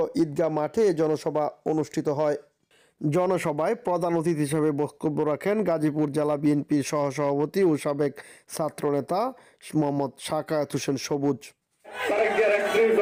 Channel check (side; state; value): both; identical; correlation 1.00